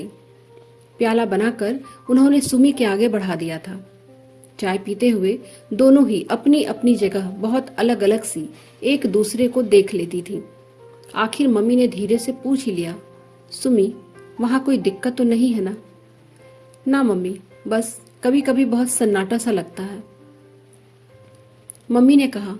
प्याला बनाकर उन्होंने सुमी के आगे बढ़ा दिया था। चाय पीते हुए दोनों ही अपनी अपनी जगह बहुत अलग अलग सी एक दूसरे को देख लेती थी। आखिर मम्मी ने धीरे से पूछ ही लिया, सुमी, वहां कोई दिक्कत तो नहीं है ना? ना मम्मी, बस कभी कभी बहुत सन्नाटा सा लगता है। मम्मी ने कहा,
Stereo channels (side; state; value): both; identical; correlation 1.00